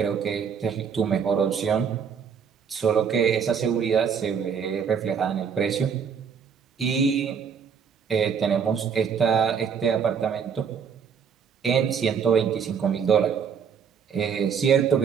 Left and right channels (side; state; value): left; quieter; 6.9 dB